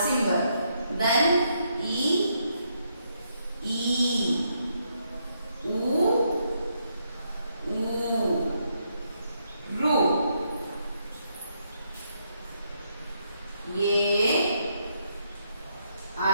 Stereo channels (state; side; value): inverted; both; correlation -0.77